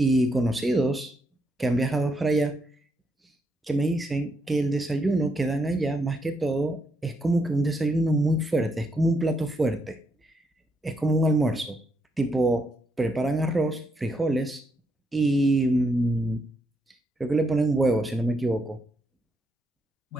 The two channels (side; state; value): both; normal; correlation 0.78